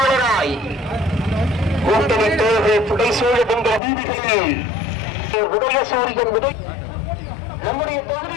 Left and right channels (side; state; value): right; drops out; at 3.8 s